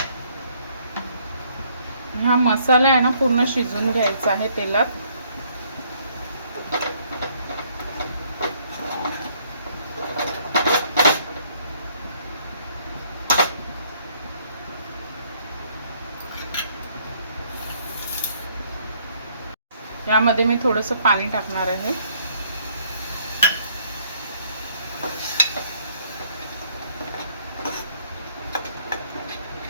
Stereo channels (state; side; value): inverted; both; correlation -0.65